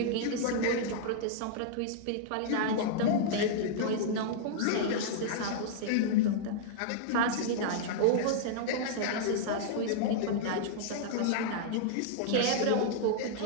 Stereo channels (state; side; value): different; both; correlation -0.01